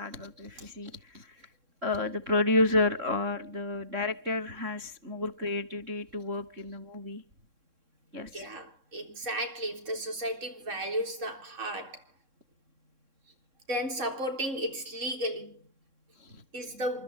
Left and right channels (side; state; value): left; late; 3.6 ms